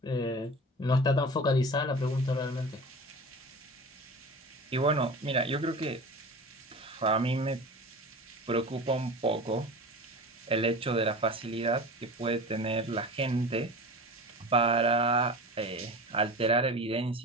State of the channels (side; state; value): both; normal; correlation 0.34